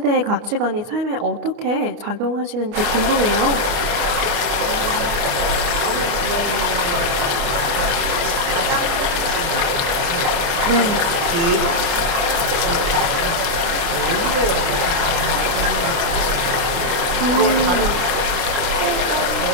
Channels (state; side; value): late; left; 29 ms